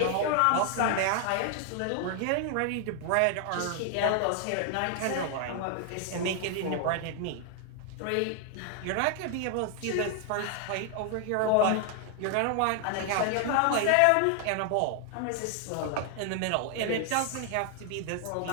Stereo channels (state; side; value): different; both; correlation 0.00